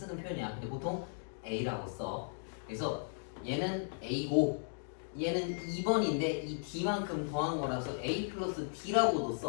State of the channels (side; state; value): right; silent; digital silence